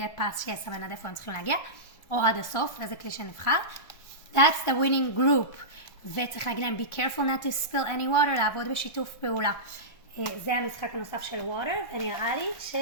פס שיסמן עד איפה הם צריכים להגיע, או עד הסוף, איזה כלי שנבחר. That's the winning group. וצריך להגיד להם be careful not to spill any water, לעבוד בשיתוף פעולה. זה המשחק הנוסף של water, ונראה לי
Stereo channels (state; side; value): late; right; 1.4 ms